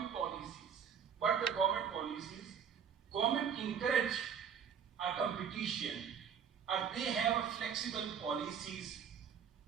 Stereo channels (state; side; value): quieter; left; 7.6 dB